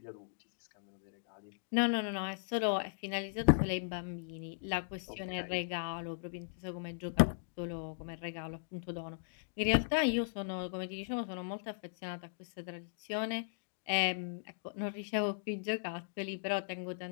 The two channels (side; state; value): right; silent; digital silence